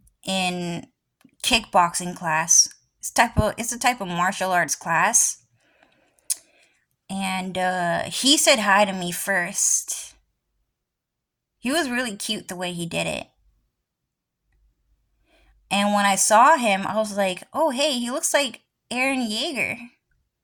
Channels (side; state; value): both; identical; correlation 1.00